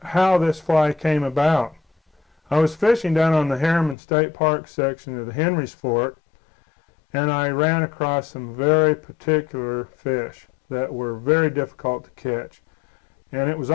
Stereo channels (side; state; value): right; drops out; at 4.0 s